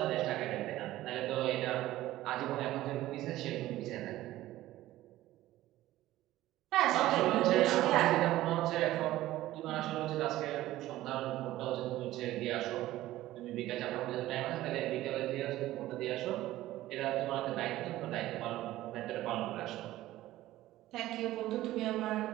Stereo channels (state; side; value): quieter; left; 15.5 dB